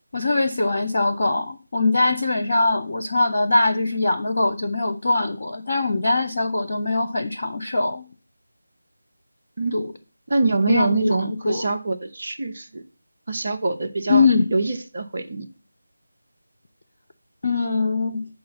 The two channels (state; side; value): inverted; both; correlation -0.89